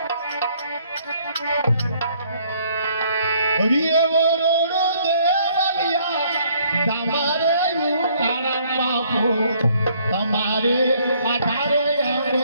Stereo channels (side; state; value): both; inverted; correlation -0.64